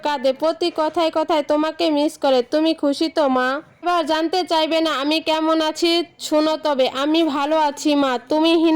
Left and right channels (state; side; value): identical; both; correlation 1.00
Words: কাঁদে, প্রতি কথায় কথায় তোমাকে মিস করে। তুমি খুশি তো মা? এবার জানতে চাইবে না আমি কেমন আছি? শোনো তবে, আমি ভালো আছি মা। তুমি